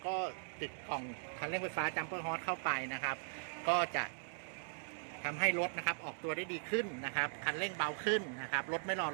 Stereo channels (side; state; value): left; silent; digital silence